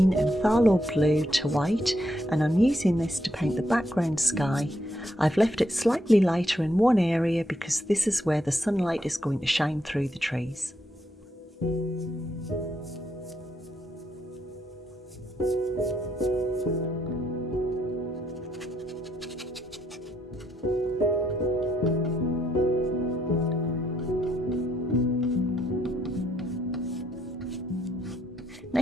and phthalo blue to white, and I'm using this to paint the background sky. I've left it slightly lighter in one area because this is where the sunlight is going to shine through the trees.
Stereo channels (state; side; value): normal; both; correlation 0.76